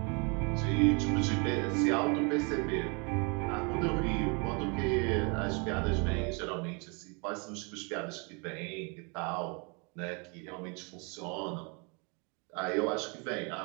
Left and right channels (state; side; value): quieter; left; 33.0 dB